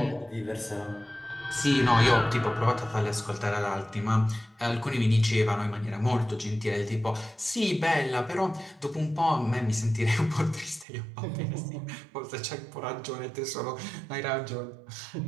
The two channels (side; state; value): left; drops out; at 10.9 s